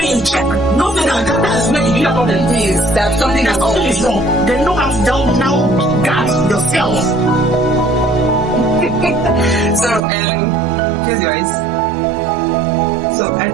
with check, nothing that's where you have problem. Please, that's something That something is wrong. Then know how to now guard yourself. So, close your eyes. So, I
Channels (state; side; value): drops out; left; at 10.0 s